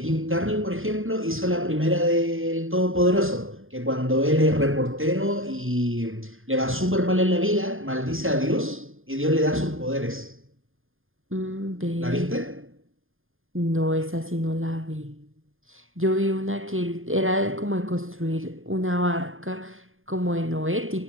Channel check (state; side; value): late; left; 0.59 ms